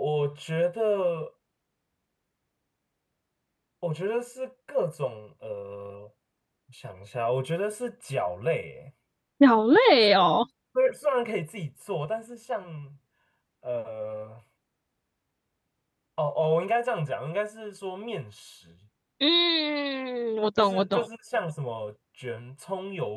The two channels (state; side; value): identical; both; correlation 1.00